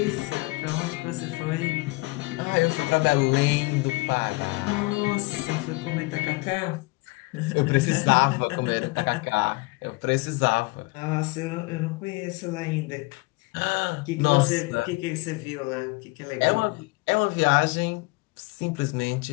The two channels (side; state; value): right; quieter; 25.0 dB